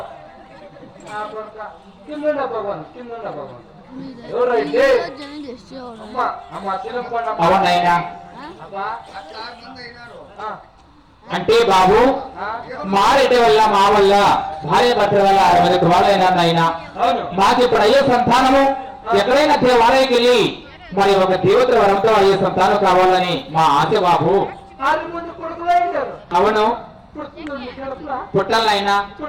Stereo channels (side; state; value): both; identical; correlation 1.00